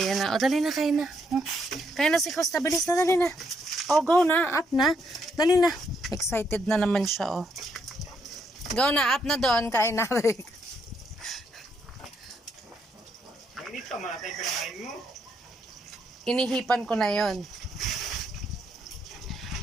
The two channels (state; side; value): normal; both; correlation 0.75